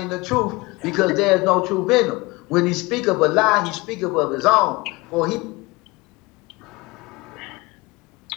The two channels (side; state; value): right; quieter; 23.5 dB